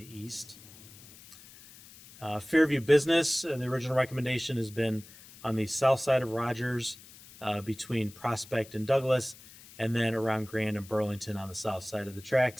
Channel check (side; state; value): left; noise; hiss, 20 dB below the sound